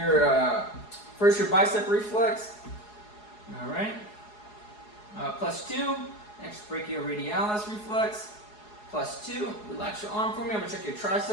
first your bicep reflex. All right. +2. Next, brachioradialis reflex. +2. Relax your arm for me. I'm gonna check your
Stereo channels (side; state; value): right; late; 4.8 ms